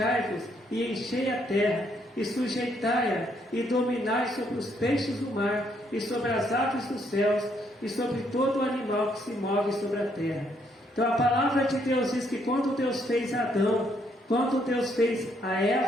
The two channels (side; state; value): both; normal; correlation 0.72